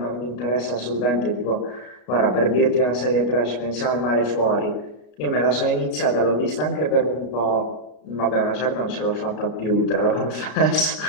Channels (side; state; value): right; late; 33 ms